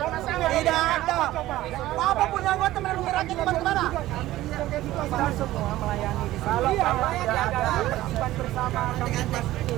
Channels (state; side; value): quieter; left; 15.7 dB